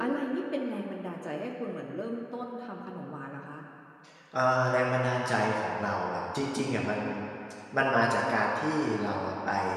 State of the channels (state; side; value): identical; both; correlation 1.00